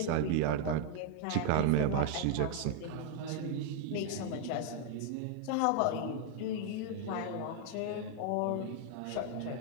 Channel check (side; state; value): both; different; correlation 0.00